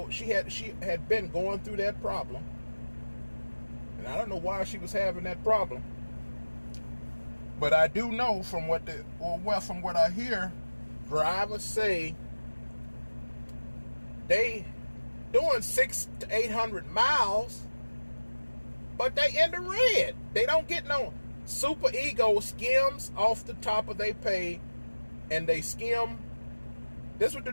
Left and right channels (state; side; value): inverted; both; correlation -1.00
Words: she had been going through that problem. And I don't know why she was having that problem. But I do know from what I hear, drivers say they doing 600 to 800 miles, but they in the red. They don't get no. Super Ego skims off the top of their pay, and they skim. This is what the